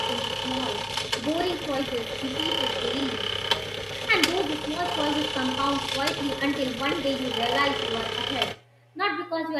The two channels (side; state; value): both; identical; correlation 1.00